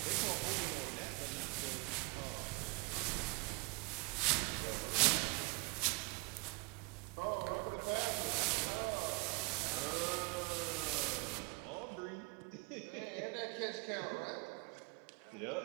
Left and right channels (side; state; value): left; quieter; 27.5 dB